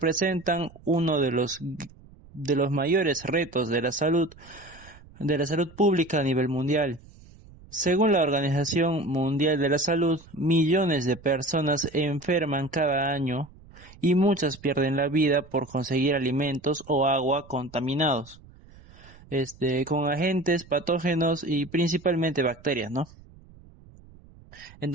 uno de los mayores retos de la salud pública a nivel mundial. Según la Organización Mundial de la Salud, millones de personas enferman cada año y muchas pierden la vida por conseguir alimentos o agua contaminados, con agentes patógenos y principalmente bacterias, ¿no?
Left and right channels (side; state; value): right; noise; rumble, 23 dB below the sound